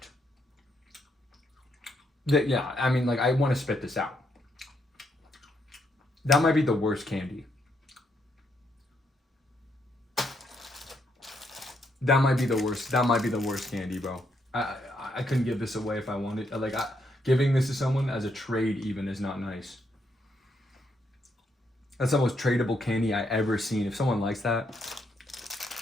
Yeah, I mean, like, I want to spit this out. That might be the worst candy. That might be the worst. That might be the worst candy, bro. I couldn't give this away if I wanted. Like, giving this to someone as a trade even is not nice. That's the most tradable candy I ever seen. If someone likes that,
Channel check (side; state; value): both; normal; correlation 0.76